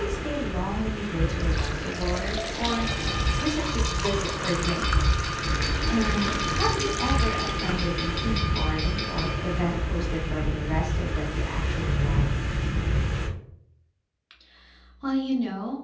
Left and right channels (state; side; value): identical; both; correlation 1.00